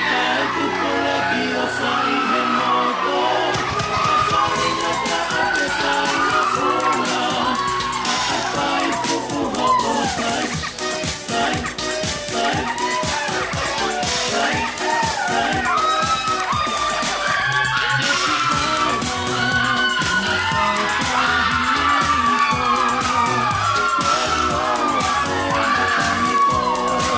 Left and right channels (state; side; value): identical; both; correlation 1.00